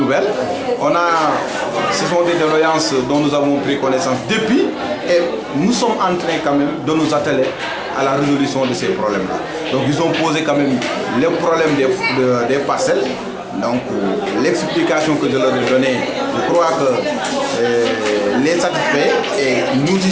Ce sont des doléances dont nous avons pris connaissance depuis et nous sommes en train quand même de nous atteler à la résolution de ces problèmes-là. Donc ils ont posé quand même le problème des parcelles. Donc l'explication que je leur ai donnée, je crois que les satisfait et nous y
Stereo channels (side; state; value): both; identical; correlation 1.00